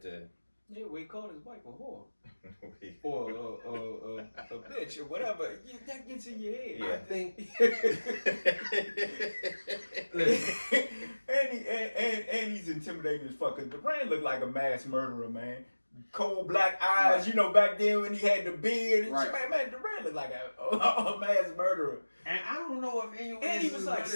to. Yeah, we called his wife a whore. or a bitch or whatever. Yeah, that gets in your head. Yeah. I think. and he's intimidating as fuck. Cause Duran looked like a mass murderer, man. Cold black eyes, you know, back then when he had the beard and shit, man, Duran looked like a mass murderer. And I don't know if anyone and he was like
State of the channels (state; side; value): inverted; both; correlation -1.00